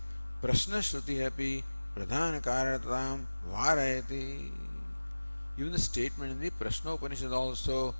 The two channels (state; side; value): inverted; both; correlation -1.00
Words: Prashna Shruti api pradhana karanatam varayati. Even the statement in the Prashna Upanishad also